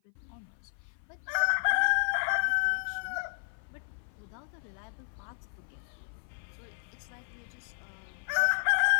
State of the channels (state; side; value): silent; right; 55 dB below the other